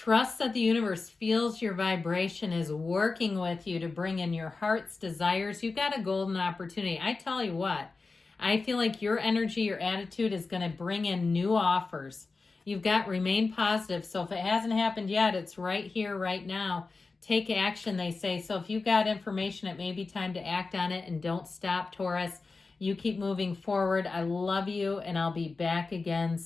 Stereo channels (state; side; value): quieter; right; 4.0 dB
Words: that the universe feels your vibration, is working with you to bring in your heart's desires. You've got a golden opportunity. I tell you what, I feel like your energy, your attitude is going to bring in new offers. You've got remain positive. So if it hasn't happened yet, it's right here, right now. Take action, they say. So if you've got information, it may be time to act on it, and don't stop, Taurus. You keep moving forward. I love you, and I'll be back again